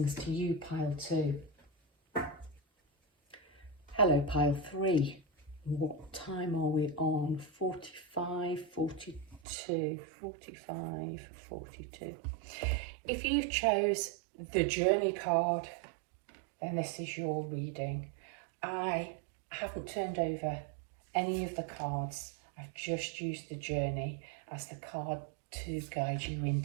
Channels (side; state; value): left; drops out; at 9.4 s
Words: to you, pile 2. Hello, pile 3. What time are we on? 45, 42, 45, 42. If you chose the journey card, then this is your reading. I haven't turned over any of the cards. I've just used the journey as the card to guide you